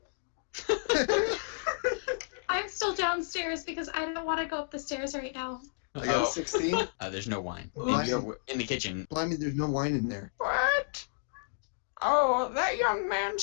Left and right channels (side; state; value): right; silent; digital silence